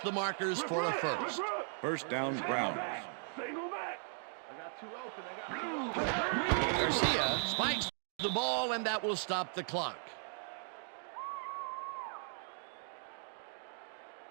the markers for a first. First down, Browns. Single back. Garcia spikes the ball, and that will stop the clock.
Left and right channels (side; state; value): left; silent; 53 dB below the other